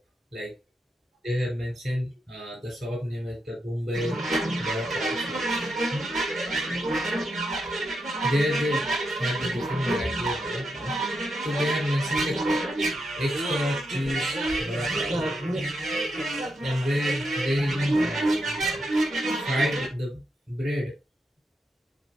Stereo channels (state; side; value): normal; both; correlation 0.84